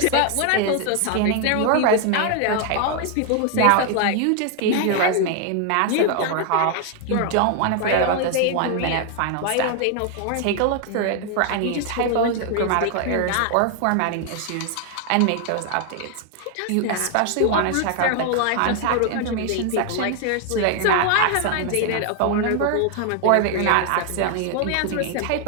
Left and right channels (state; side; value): different; both; correlation 0.00